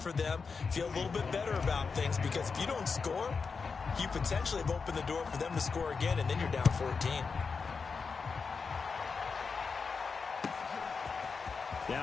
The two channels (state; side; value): quieter; right; 5.1 dB